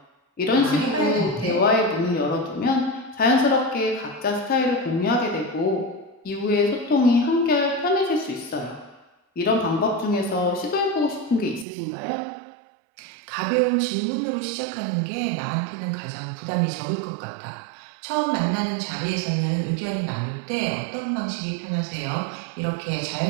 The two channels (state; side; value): drops out; left; at 11.7 s